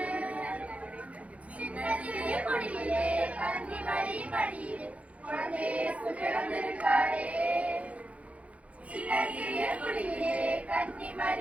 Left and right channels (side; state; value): left; late; 0.065 ms